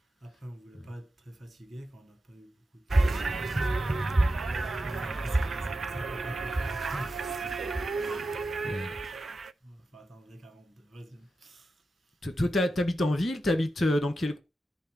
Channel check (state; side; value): normal; both; correlation 0.90